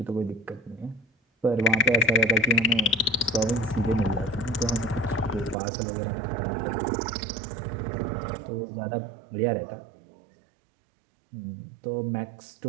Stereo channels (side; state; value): left; drops out; at 5.6 s